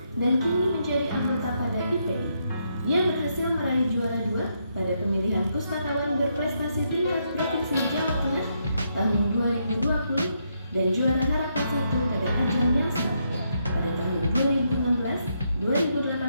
dan kini menjadi anggota pada IPI. Ia berhasil meraih juara 2 pada pemilihan pustakawan berprestasi tingkat Provinsi Jawa Tengah tahun 2020 dan juara harapan 1 pada ajang yang sama pada tahun 2016,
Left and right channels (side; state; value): both; inverted; correlation -0.78